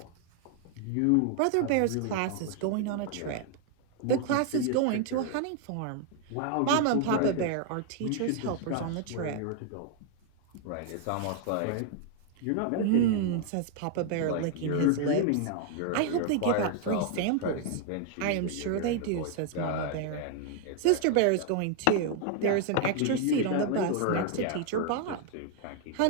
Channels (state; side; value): different; both; correlation 0.00